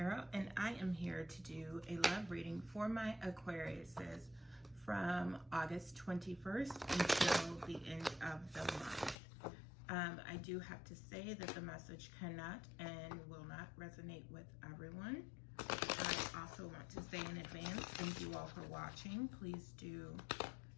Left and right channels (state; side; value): drops out; right; at 9.2 s